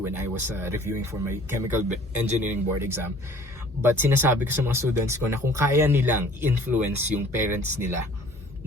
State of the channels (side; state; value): both; normal; correlation 0.52